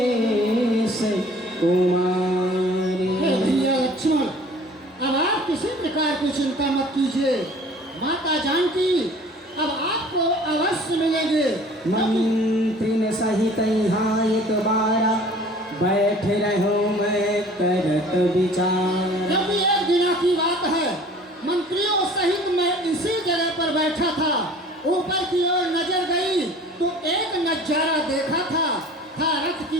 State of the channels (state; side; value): normal; both; correlation 0.49